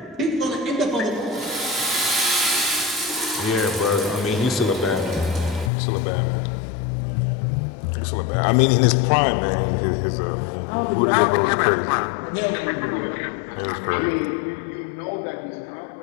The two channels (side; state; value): right; drops out; at 5.7 s